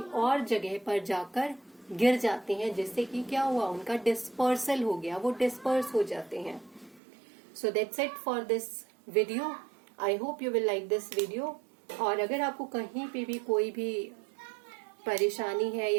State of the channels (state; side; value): drops out; left; at 7.0 s